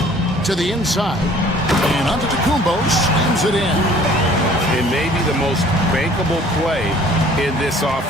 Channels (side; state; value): both; normal; correlation 0.53